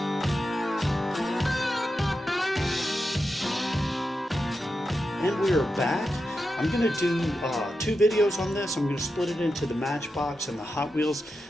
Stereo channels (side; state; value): both; normal; correlation 0.89